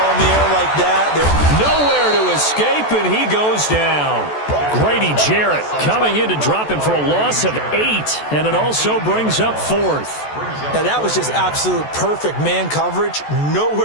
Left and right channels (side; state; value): right; late; 14 ms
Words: in the air like that, nowhere to escape, and he goes down. Grady Jarrett coming in to drop him for a loss of 8, and it also brings up 4th. Now, that was just absolute perfect man coverage.